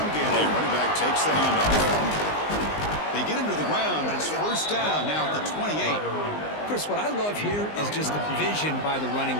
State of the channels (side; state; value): right; late; 19 ms